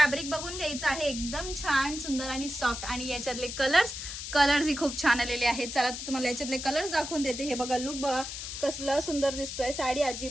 बघून घ्यायचं आहे, एकदम छान सुंदर आणि सॉफ्ट. आणि याच्यातले कलर्स ही खूप छान आलेले आहेत. चला तर तुम्हाला याच्यातले कलर्स दाखवून देते. हे बघा, लुक बघा कसला सुंदर दिसतोय. साडी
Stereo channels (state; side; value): noise; left; hiss, 7 dB below the sound